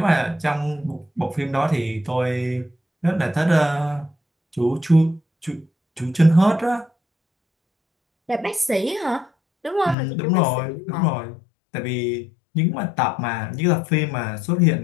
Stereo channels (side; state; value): right; drops out; at 10.0 s